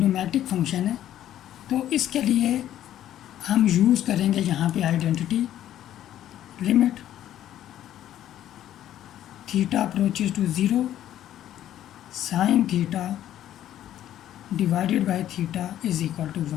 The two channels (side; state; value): right; quieter; 12.0 dB